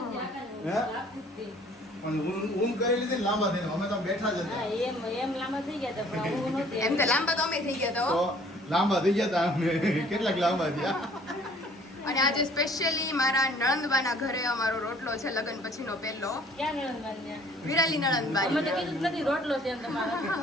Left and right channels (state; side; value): normal; both; correlation 0.55